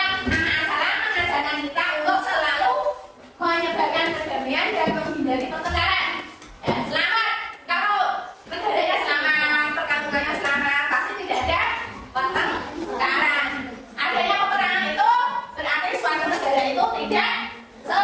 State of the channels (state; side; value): identical; both; correlation 1.00